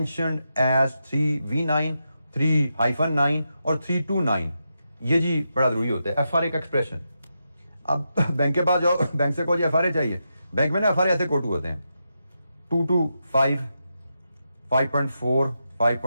as 3V9, 3-9 और 329। ये जी बड़ा जरूरी होता है FRA का एक्सप्रेशन। अब बैंक के पास जाओ, बैंक से कोई FRA चाहिए, बैंक में ना FRA ऐसे कोटू होते हैं 225, 5.4,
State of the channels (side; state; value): both; inverted; correlation -0.86